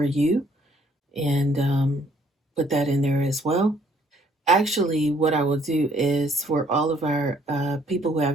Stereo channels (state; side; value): normal; both; correlation 0.64